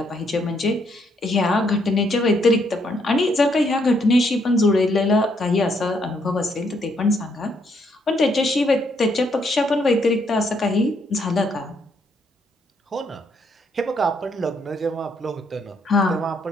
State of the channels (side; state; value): both; normal; correlation 0.73